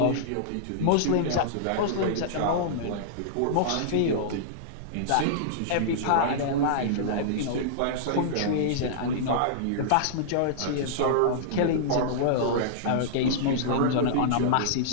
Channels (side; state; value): both; different; correlation -0.02